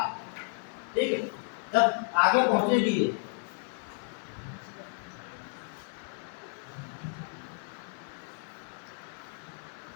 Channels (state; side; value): silent; right; 56 dB below the other